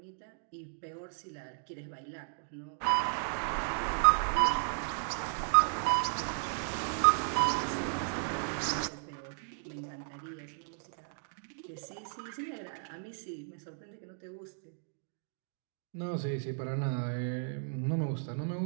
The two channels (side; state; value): left; silent; digital silence